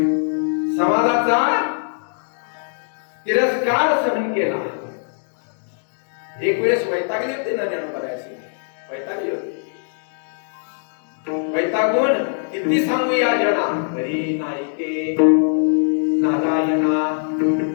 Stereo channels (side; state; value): right; silent; digital silence